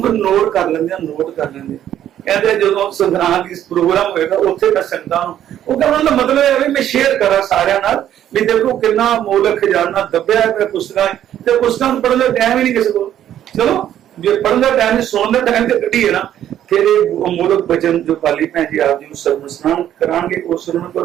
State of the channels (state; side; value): quieter; left; 11.1 dB